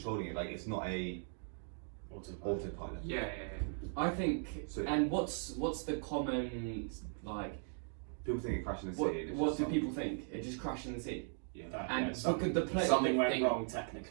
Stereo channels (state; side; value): silent; left; 52 dB below the other